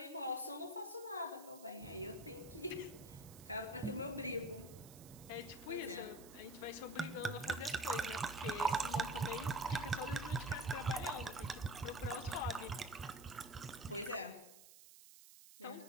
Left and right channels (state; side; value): noise; right; hiss, 18 dB below the sound